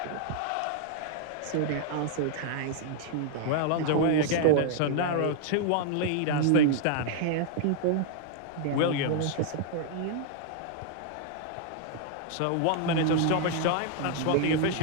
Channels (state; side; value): different; both; correlation -0.01